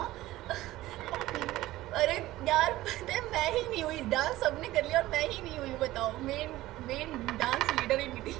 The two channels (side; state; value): left; quieter; 16.5 dB